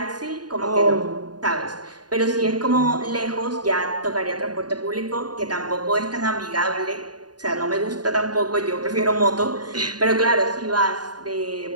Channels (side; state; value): left; late; 0.70 ms